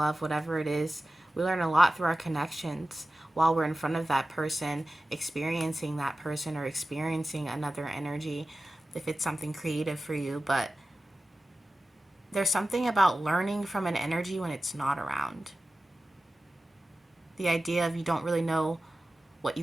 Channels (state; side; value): normal; both; correlation 0.95